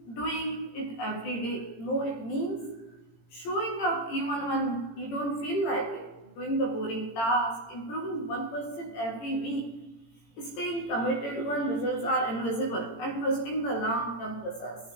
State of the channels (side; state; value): right; late; 18 ms